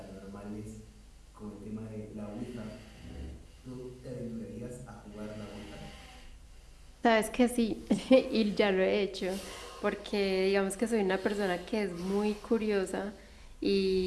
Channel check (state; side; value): identical; both; correlation 1.00